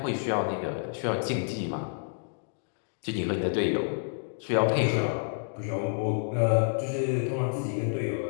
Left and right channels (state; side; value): silent; right; digital silence